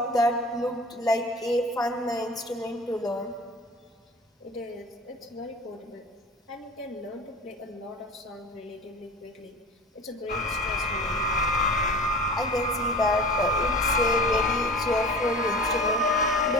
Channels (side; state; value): both; normal; correlation 0.38